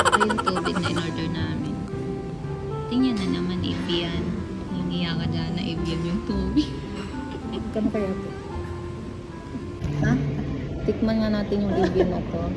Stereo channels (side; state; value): both; identical; correlation 1.00